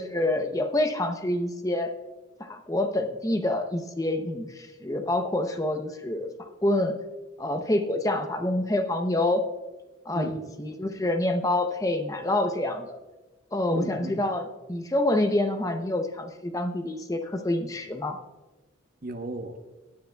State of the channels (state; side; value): normal; both; correlation 0.59